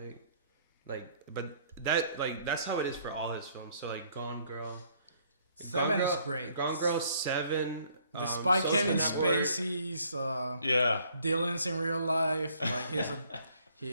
Like But that's how it is for all his films. So like Gone Girl. Seven is great. Gone Girl 7. Despite Social Kevin Network. Spacey's Dylan's in real life, like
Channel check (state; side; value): inverted; both; correlation -0.63